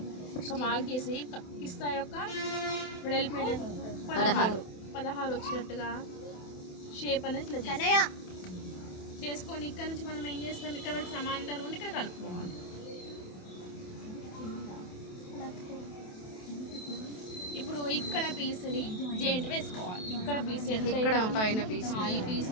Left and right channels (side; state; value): right; late; 28 ms